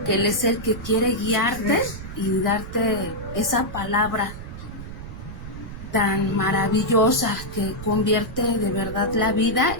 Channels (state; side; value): noise; right; rumble, 11 dB below the sound